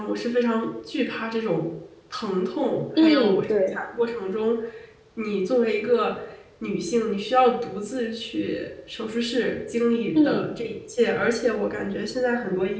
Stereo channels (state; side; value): identical; both; correlation 1.00